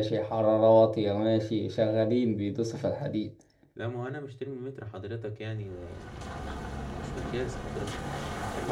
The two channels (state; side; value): identical; both; correlation 1.00